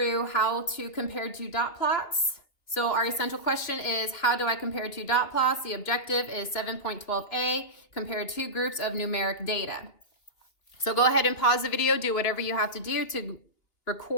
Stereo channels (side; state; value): right; late; 2.8 ms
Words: how to compare two dot plots. So our essential question is, how do I compare two dot plots? The objective is 7.12a, compare two groups of numeric data. So go ahead and pause the video, do whatever you have to do to